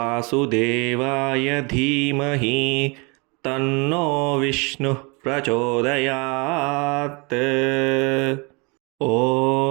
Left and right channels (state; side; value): quieter; left; 29.5 dB